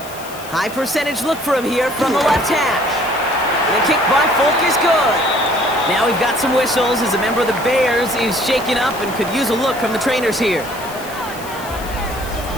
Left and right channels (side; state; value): left; noise; hiss, 16 dB below the sound